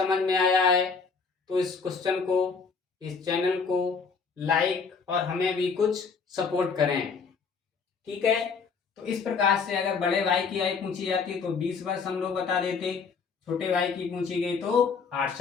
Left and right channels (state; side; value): quieter; right; 5.3 dB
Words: में आया है, तो इस क्वेश्चन को, इस चैनल को लाइक और हमें भी कुछ सपोर्ट करें। ठीक है, तो इस प्रकार से अगर बड़े भाई की आयु पूछी जाती तो 20 वर्ष हम लोग बता देते, छोटे भाई की पूछी गई तो 8